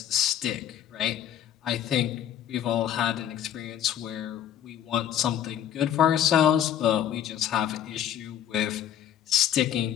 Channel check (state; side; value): quieter; right; 10.3 dB